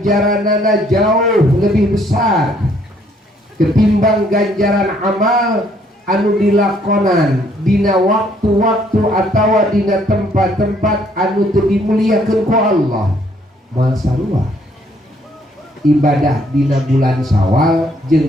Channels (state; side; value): normal; both; correlation 0.66